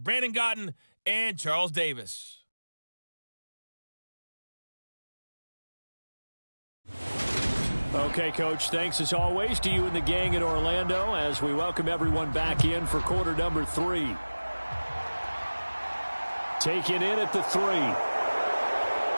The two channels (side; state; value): both; inverted; correlation -1.00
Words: Brandon Gotten and Charles Davis. Okay, Coach, thanks as always to you and the gang in Orlando as we welcome everyone back in for quarter number 3. Taken in at the 3.